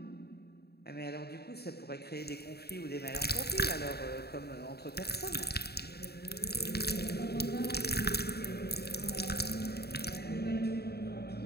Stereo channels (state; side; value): late; right; 0.47 ms